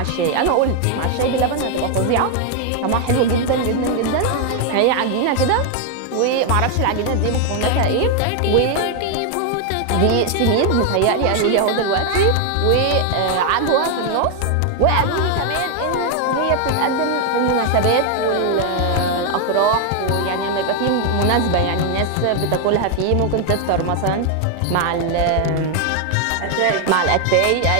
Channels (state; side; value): different; both; correlation 0.00